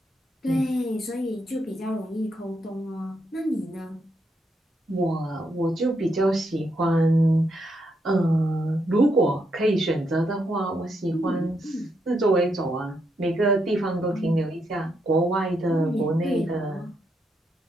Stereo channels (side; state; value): both; normal; correlation 0.79